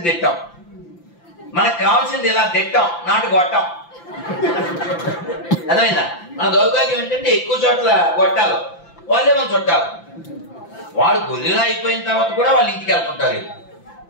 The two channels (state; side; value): late; right; 5.9 ms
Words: దిట్టం. మనకు కావాల్సింది ఇలా దిట్టం, నాటు గొట్టం. అర్థమైందా? మన దౌర్భాగ్యం ఏంటంటే ఎక్కువ చోట్ల గొట్టాలు, వాళ్ళే మన చుట్టాలు. వాడు గొర్రెలా అయిపోయిన తర్వాత కూడా వాళ్ళ ఇంటికి వెళ్తుంటారు.